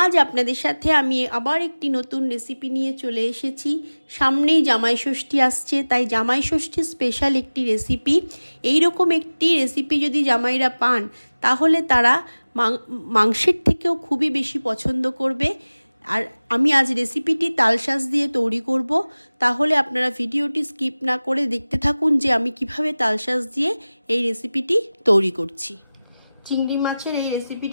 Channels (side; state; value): both; inverted; correlation -0.98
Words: আপনাদের সাথে আমি আবার একটি নতুন রেসিপি নিয়ে চলে এসেছি। সামনেই জামাই ষষ্ঠী আসছে, তাই জামাই ষষ্ঠীর স্পেশাল একটি রেসিপি। এইরকম একটি রেসিপি যদি জামাইরা পান তাহলে তারা মাংসের থেকেও খুবই বেশি পছন্দ করবে। আর আমি আজ রেসিপিটি তালশাঁস দিয়ে তৈরি করব, তাহলে আপনারা ভিডিওটি স্কিপ না করে দেখতে থাকুন যে আমি কিভাবে তালশাঁস দিয়ে এই রেসিপিটি তৈরি করছি। চিংড়ি মাছের এই